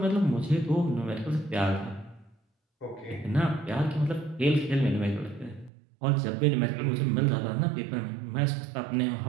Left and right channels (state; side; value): drops out; left; at 5.7 s